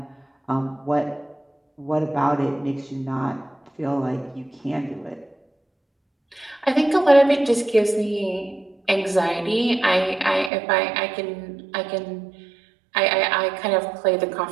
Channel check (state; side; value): drops out; left; at 10.5 s